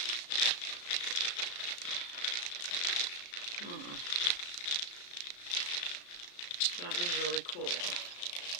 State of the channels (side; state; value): right; late; 34 ms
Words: That was really cool.